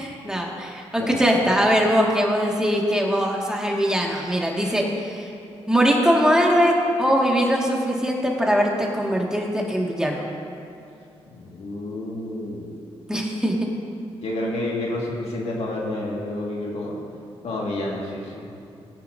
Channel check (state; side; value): normal; both; correlation 0.81